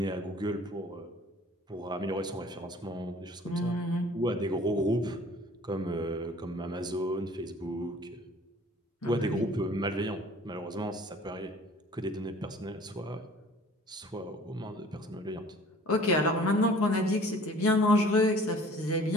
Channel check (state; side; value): normal; both; correlation 0.50